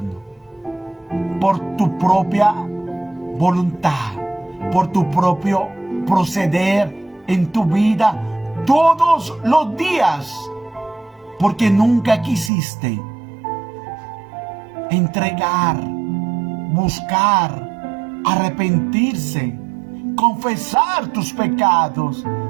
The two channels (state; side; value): drops out; left; at 12.5 s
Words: por tu propia voluntad, por tu propio proceder en tu vida todos los días, porque nunca quisiste entregar, buscar, arrepentirse, confesar tus pecados